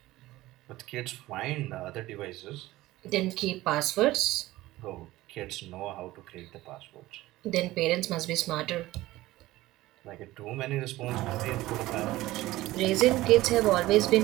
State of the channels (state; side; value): quieter; left; 17.3 dB